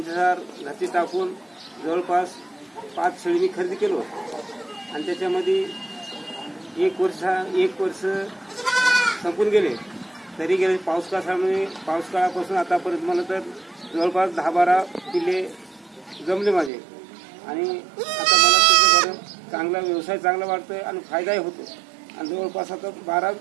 घाती टाकून जवळपास 5 शेळी मी खरेदी केलो आणि त्याच्यामध्ये एक वर्ष संपून गेले. तरी गेले पाऊस काळापासून आतापर्यंत मला तर जवळपास 10-12 पिल्ले जमले माझे. आणि आता मला त्याचं बरं चांगला व्यवसाय चांगला वाटतोय आणि फायदाही होतो. आणि जवळपास आता 12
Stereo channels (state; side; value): drops out; left; at 16.7 s